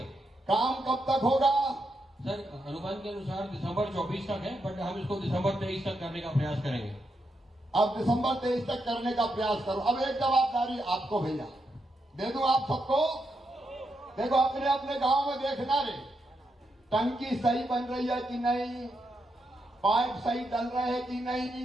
काम कब तक होगा? सर अनुमान के अनुसार दिसंबर 24 तक है, बट हम इसको दिसंबर 23 तक करने का प्रयास करेंगे। अब दिसंबर 23 तक करने का प्रयास करो। अब एक जवाबदारी आपको भैया दे दूं आप सबको। देखो अपने अपने गांव में देखना रे, टंकी सही बन रही है कि नहीं, पाइप सही डल रहे हैं कि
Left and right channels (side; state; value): both; normal; correlation 0.83